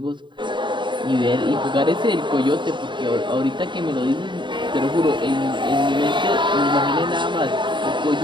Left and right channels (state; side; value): late; left; 0.23 ms